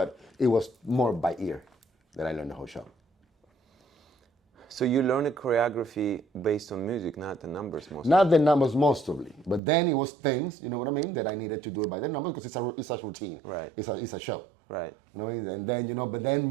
it was more by ear that I learned the whole show. So you learned a choreography based on music, not the numbers mostly. Not the numbers mostly, but then it was things, you know what I mean, that I needed to do it by the numbers because it's a routine. Right. It's a show. Right. You know, and then, you know, but then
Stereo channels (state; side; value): drops out; left; at 9.6 s